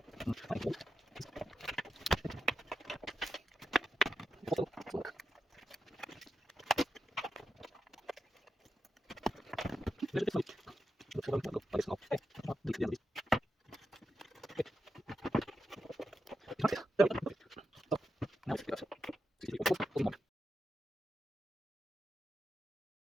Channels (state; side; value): normal; both; correlation 0.88